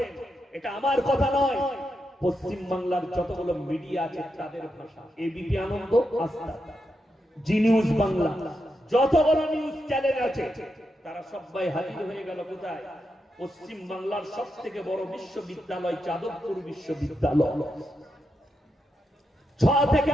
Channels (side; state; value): both; normal; correlation 0.85